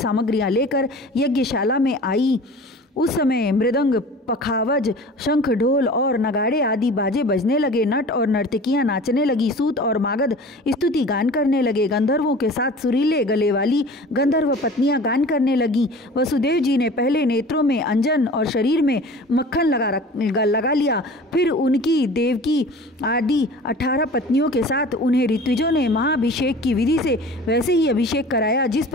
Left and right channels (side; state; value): both; normal; correlation 0.41